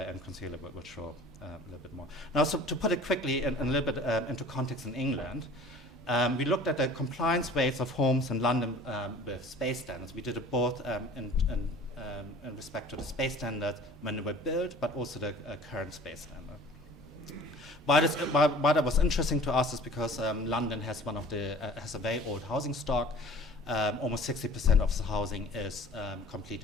and Consuela will show a little bit more. Now, so to put it quickly and a little bit into context in England, we looked at the compliance rates of homes in London with space standards. We did it both in respect to the space standards when they were built, but also the current space standard. Why that was interesting to us is because London has has a very old housing stock. Almost 60% of the housing is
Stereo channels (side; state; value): both; normal; correlation 0.46